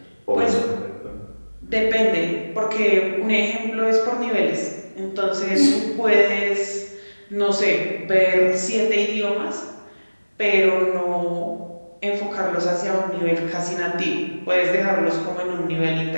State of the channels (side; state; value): both; inverted; correlation -1.00